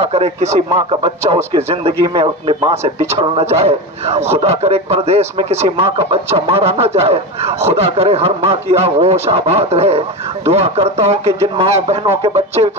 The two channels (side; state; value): both; normal; correlation 0.21